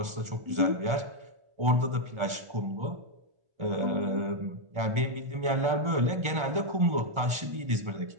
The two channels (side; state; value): left; late; 1.4 ms